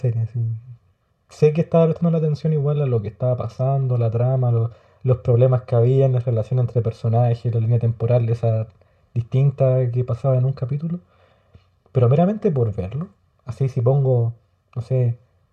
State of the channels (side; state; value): both; identical; correlation 1.00